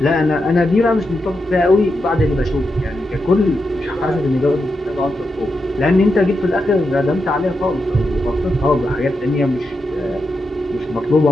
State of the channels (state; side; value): normal; both; correlation 0.86